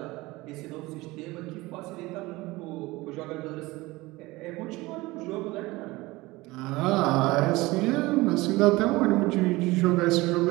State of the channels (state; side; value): quieter; left; 20.8 dB